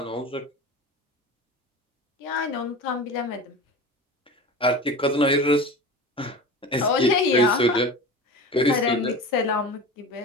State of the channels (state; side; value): normal; both; correlation 0.32